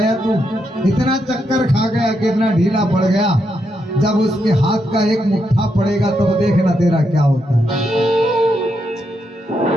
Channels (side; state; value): both; normal; correlation 0.81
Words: तू? इतना चक्कर खा गया, कितना ढीला पड़ गया। जब उसके हाथ का एक मुट्ठा पड़ेगा तब देखना तेरा क्या होता है।